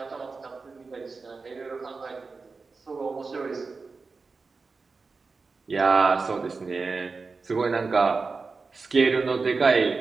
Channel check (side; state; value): left; quieter; 4.3 dB